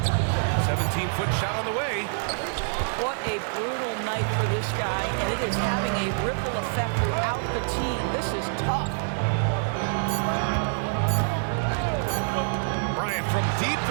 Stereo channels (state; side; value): silent; left; 61 dB below the other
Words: 17-foot shot on the way. What a brutal night for this guy, and it is having a ripple effect throughout the team. This is tough. Bryant from deep